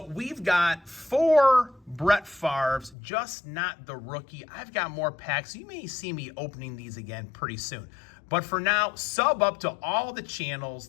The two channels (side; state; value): right; drops out; at 3.0 s